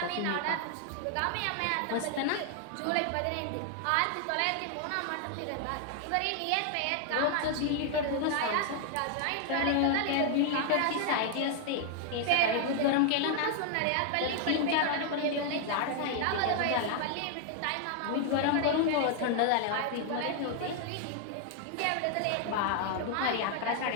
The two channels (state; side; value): different; both; correlation 0.00